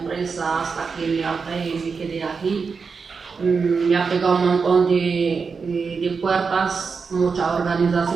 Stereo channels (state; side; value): quieter; left; 5.2 dB